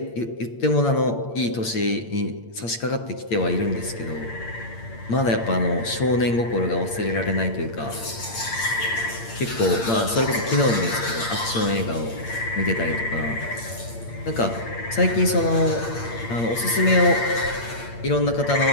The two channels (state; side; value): late; right; 8.7 ms